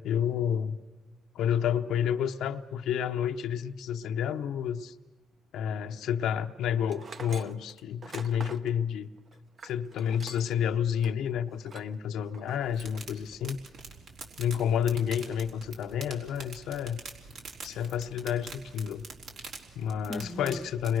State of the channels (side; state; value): right; quieter; 7.9 dB